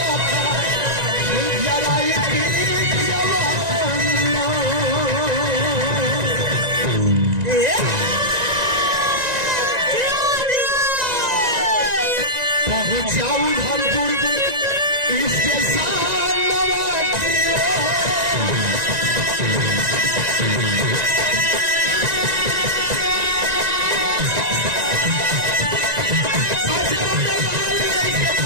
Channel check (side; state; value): left; late; 1.9 ms